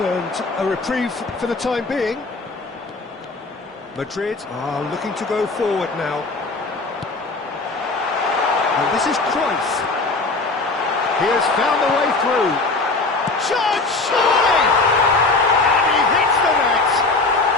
a reprieve for the time being. Madrid are looking to go forward now. And this is Cruyff. He has found the way through. Shot! And he hits the net!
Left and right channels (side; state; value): right; quieter; 3.5 dB